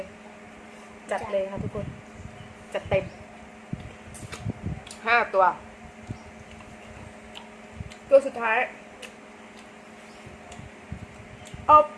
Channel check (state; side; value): identical; both; correlation 1.00